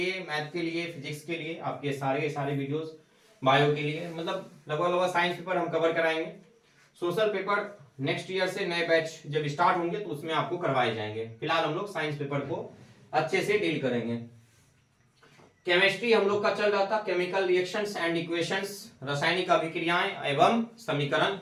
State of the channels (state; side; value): identical; both; correlation 1.00